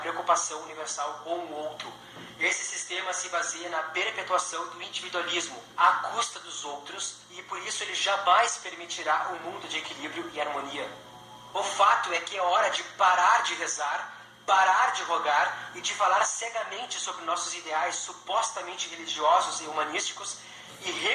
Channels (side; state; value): both; identical; correlation 1.00